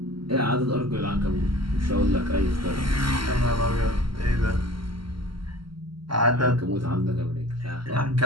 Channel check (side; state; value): left; late; 0.73 ms